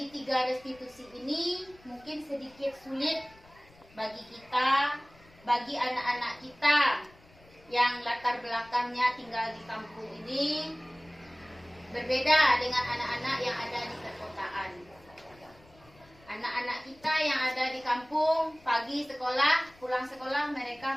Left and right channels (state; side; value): noise; left; rumble, 26 dB below the sound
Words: restitusi ini mungkin sedikit sulit bagi kita, bagi anak-anak kita yang latar belakangnya tinggal di kampung ini berbeda dengan anak-anak yang ada di perkotaan. Anak-anak kita yang ada di kampung, pagi sekolah, pulang sekolah